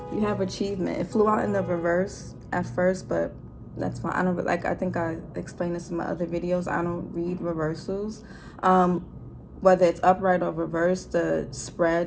you have achievement. It flew out in the reverse at first, but that's fine. I don't like, I think I explained this in my other videos. I don't read reversals. Whether it's upright or reverse, the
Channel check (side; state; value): both; identical; correlation 1.00